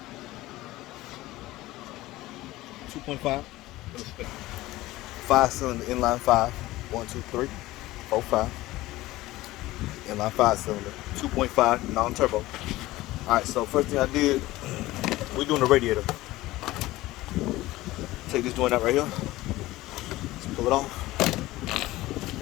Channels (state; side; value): quieter; right; 17.8 dB